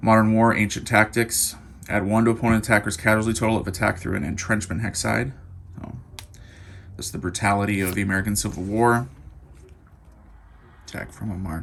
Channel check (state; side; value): identical; both; correlation 1.00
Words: Modern War Ancient Tactics. Add 1 to opponent attacker's casualty total if attacked through an entrenchment hex side. This is the brutality of the American Civil War. Attack from a